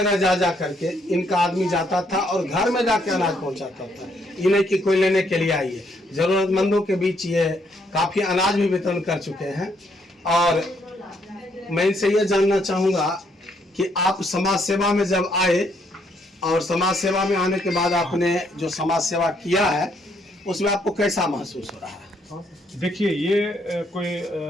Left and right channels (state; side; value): normal; both; correlation 0.72